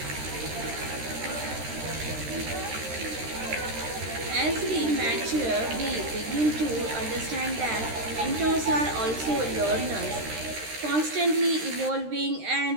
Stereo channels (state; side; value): late; left; 13 ms